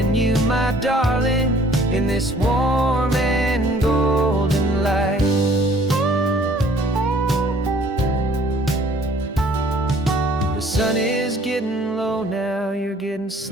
you, my darling, in this warm and golden light. The sun is getting low now, you're getting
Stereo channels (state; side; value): normal; both; correlation 0.56